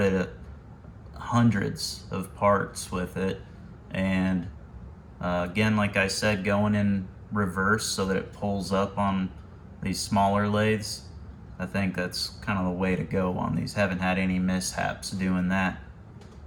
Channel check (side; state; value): both; identical; correlation 1.00